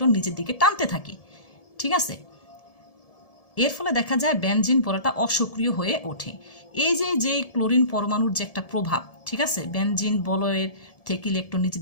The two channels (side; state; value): right; late; 1.7 ms